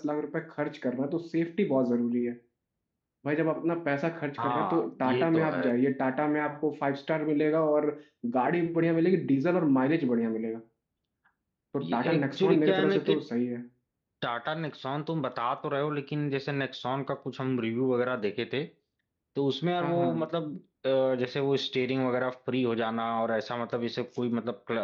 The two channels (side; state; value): both; identical; correlation 1.00